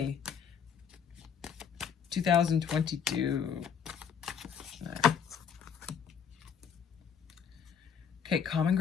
2022. Okay, common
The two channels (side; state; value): right; quieter; 7.3 dB